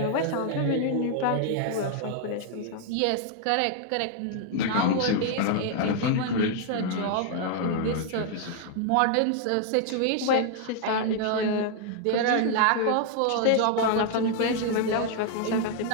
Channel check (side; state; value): both; different; correlation 0.00